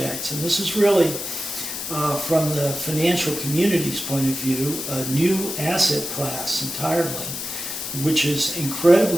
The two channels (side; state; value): left; noise; hiss, 6 dB below the sound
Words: And this is really, from the financial community's point of view, a new asset class entirely, which is